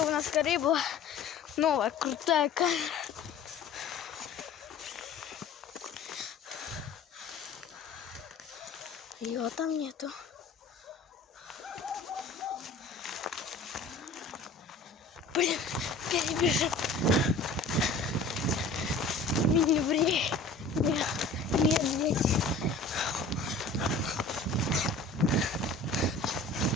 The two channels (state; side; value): quieter; right; 3.6 dB